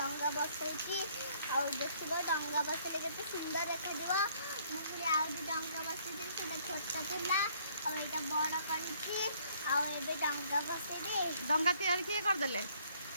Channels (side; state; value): both; inverted; correlation -0.63